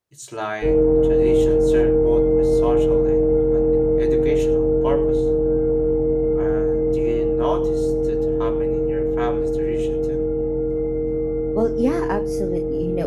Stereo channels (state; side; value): identical; both; correlation 1.00